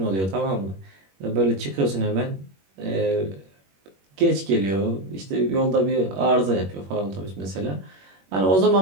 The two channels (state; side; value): late; left; 21 ms